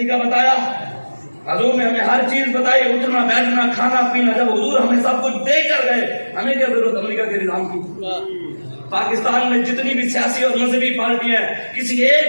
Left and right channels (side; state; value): both; inverted; correlation -1.00